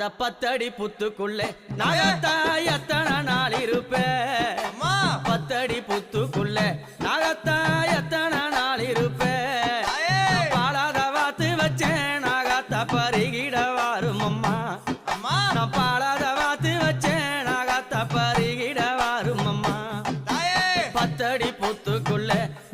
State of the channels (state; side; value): identical; both; correlation 1.00